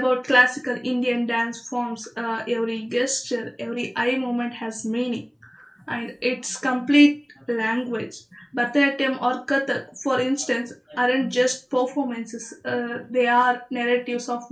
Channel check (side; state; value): both; identical; correlation 1.00